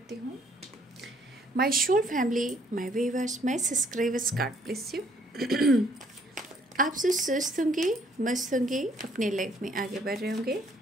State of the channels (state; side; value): normal; both; correlation 0.65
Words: हूँ। My soul family, my viewers, my subscribers, God bless you. आप सब स्वस्थ होंगे, मस्त होंगे, अपने लाइफ में आगे बढ़ रहे होंगे।